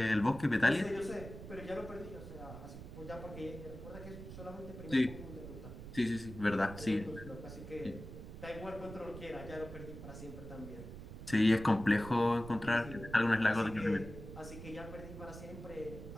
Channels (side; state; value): right; noise; rumble, 12 dB below the sound